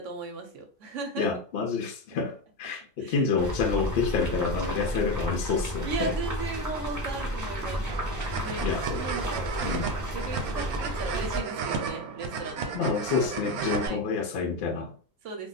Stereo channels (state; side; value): normal; both; correlation 0.16